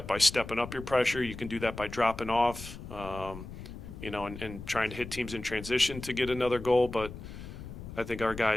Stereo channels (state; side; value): noise; left; rumble, 11 dB below the sound